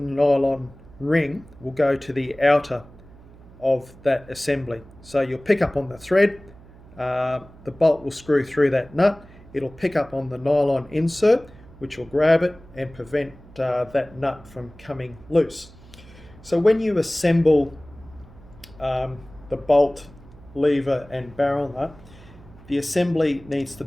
ring will go to the outer of that assembly. So you'll pick up on the thread, the bolt will screw through that nut, it'll pick up on the nylon insert, which will grab it and prevent that nut from coming loose. So when you assemble the bolt, lever and barrel nut, the assembly needs to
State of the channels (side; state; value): right; noise; hum, 22 dB below the sound